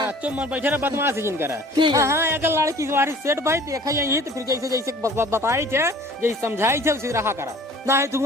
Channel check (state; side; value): normal; both; correlation 0.49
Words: चुप बैठे रहा बदमाश जिन करा। हाँ अगर लड़की तुम्हारी सेट भाई देखा यही तो फिर जैसे जैसे बताई थे जैसे समझाई थे उसी रहा करा ना है। तू